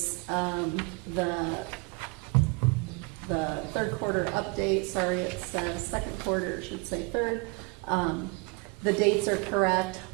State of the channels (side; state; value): left; quieter; 28.9 dB